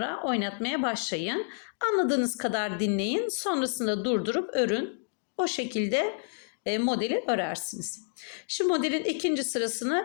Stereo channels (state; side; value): silent; right; digital silence